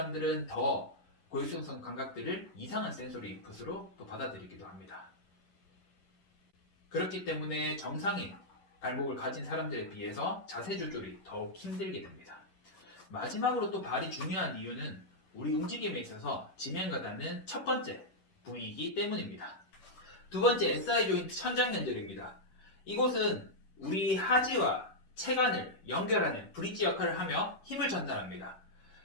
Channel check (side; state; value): right; late; 10 ms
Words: 더 고유수용성 감각들을 이상한 센소리 인풋으로 또 받아들이기도 합니다. 그렇기 때문에 정상인 발목을 가진 사람들에 비해서 자세 조절이 더욱 힘들게 됩니다. 마지막으로 또 발이 중요한 이유는 우리 움직임에 있어서 지면과 닿는 첫 번째 부위이기 때문입니다. 두 번째, SI 조인트 천장연결입니다. 이곳은 우리 하지와 체관을 연결하는 브릿지 역할을 하며 힘을 전달합니다.